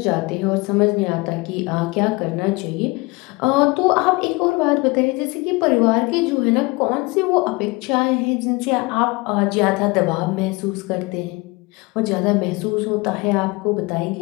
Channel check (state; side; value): quieter; right; 25.0 dB